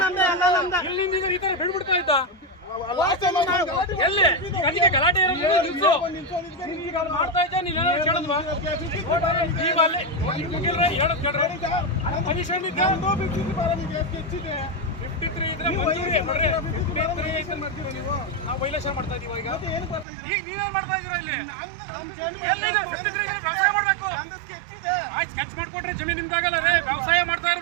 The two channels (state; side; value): drops out; left; at 20.1 s